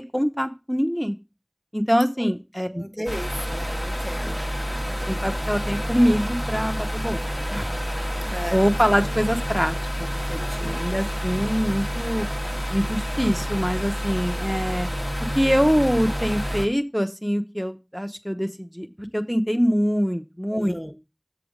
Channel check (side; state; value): both; identical; correlation 1.00